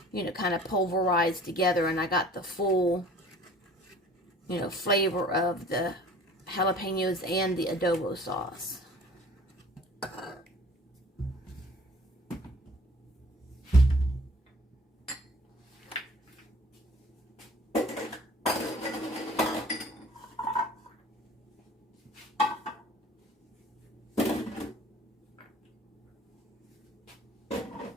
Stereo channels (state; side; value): normal; both; correlation 0.49